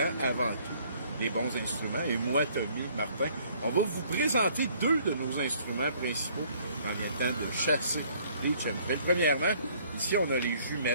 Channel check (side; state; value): both; inverted; correlation -0.60